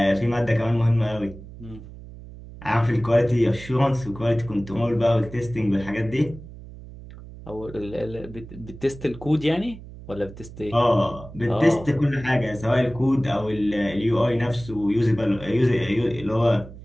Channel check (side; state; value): right; noise; hum, 16 dB below the sound